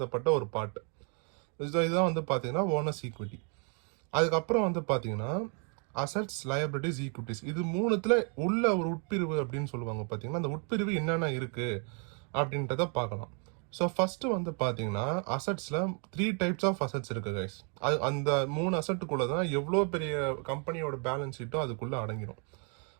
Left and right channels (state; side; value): quieter; left; 38.9 dB